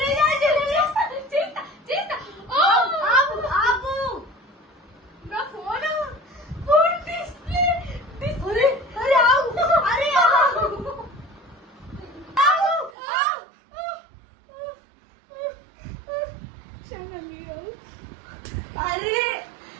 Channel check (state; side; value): drops out; left; at 12.9 s